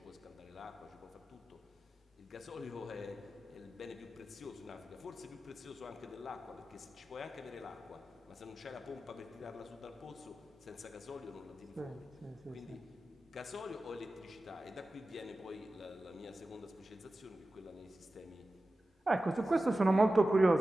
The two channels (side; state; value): both; normal; correlation 0.94